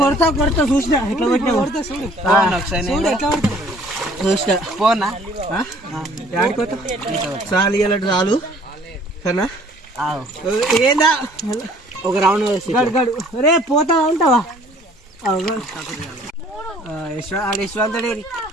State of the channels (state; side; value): normal; both; correlation 0.55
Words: కొడతా చూసినా ఎట్లా కొట్టినా కొడతా చూడు ఎట్లా కొడతా చూసినా పోనా ఆడుకోతా చాలు ఇలాంటి చాలు సరేనా ఏందా ఒక రౌండ్ గడు రే పోతా ఉంటావా యశ్వంతుడే